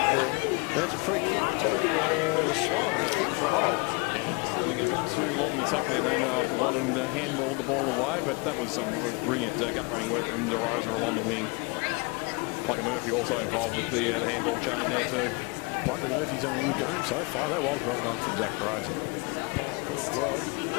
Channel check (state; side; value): quieter; right; 30.5 dB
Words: the... That's a free kick to the Swans, I think, for a hole. Yeah, just lingered a bit too long in the tackle there, Lando, after one and handballed the ball away, but that was some brilliant gut-running work from DeRosa along the wing. Plugger Murphy also involved with the handball chain there too. Plugger Murphy's having a good game so far. That was well done from Zach DeRosa. Pirate called well.